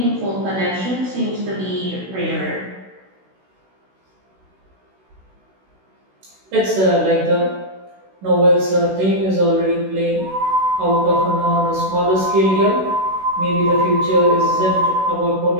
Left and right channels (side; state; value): left; late; 16 ms